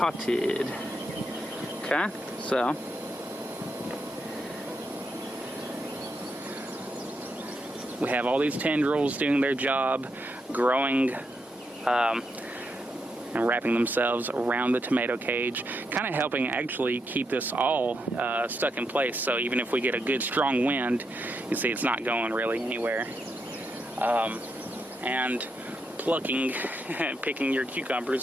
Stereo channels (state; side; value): normal; both; correlation 0.82